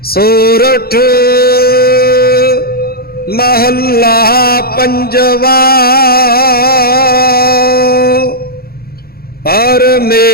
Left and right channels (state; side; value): late; right; 0.44 ms